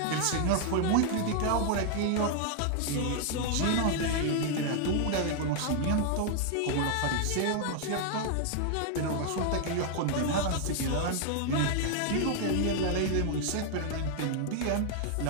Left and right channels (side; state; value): both; different; correlation 0.00